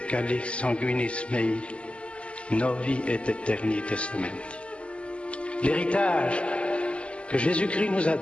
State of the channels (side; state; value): right; late; 0.056 ms